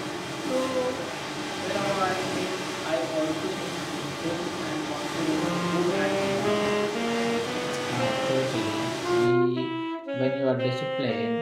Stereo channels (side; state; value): both; identical; correlation 1.00